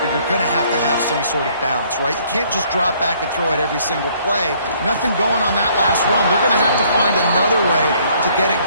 you're going to have some sort of balance, right? You can't just drop back and throw it every single play. Nothing going on that last run. They're going to have to find another way to get it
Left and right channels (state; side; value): inverted; both; correlation -0.63